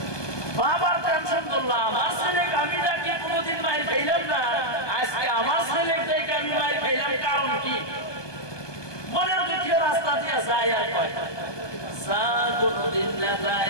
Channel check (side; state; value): right; late; 1.2 ms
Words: বাবার টেনশন করলাম, আমার ছেলেকে আমি ডাকি কোনোদিন মাইর খাইলাম না, আজকে আমার ছেলেকে আমি মাইর খাইলাম, কারণ কি? মনের দুঃখে রাস্তা দিয়ে যায় আর কয় যা কোনোদিন না